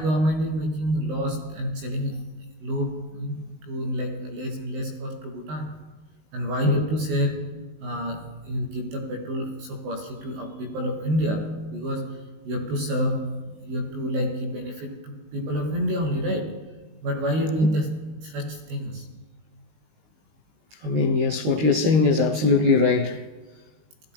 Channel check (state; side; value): late; left; 19 ms